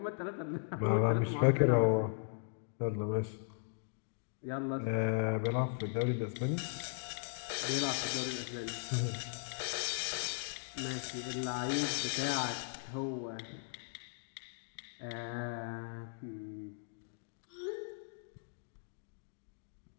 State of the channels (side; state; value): right; silent; digital silence